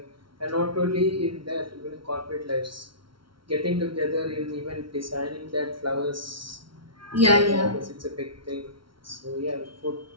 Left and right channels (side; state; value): left; late; 0.74 ms